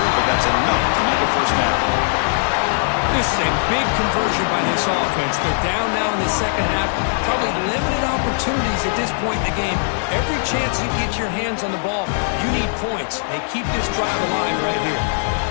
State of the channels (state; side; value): silent; right; 66 dB below the other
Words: but that's enough to make a 1st down. This is a big conversion by this offense. They're down now in the 2nd half. Probably limited opportunities at this point in the game. Every chance you get your hands on the ball, you need points. They keep this drive alive right here.